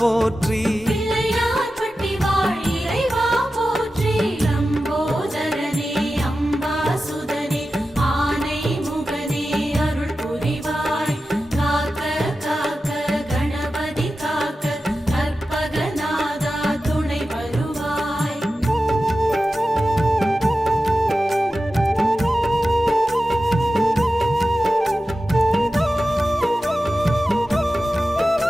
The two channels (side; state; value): both; normal; correlation 0.93